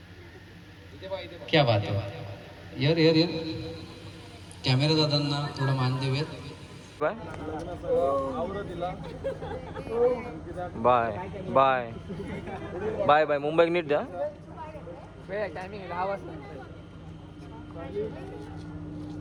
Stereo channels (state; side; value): identical; both; correlation 1.00